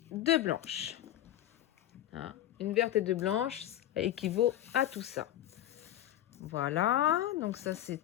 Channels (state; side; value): quieter; right; 12.7 dB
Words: 2 blanches. Hein? Une verte et 2 blanches, ça équivaut à tout ça. Voilà, donc ça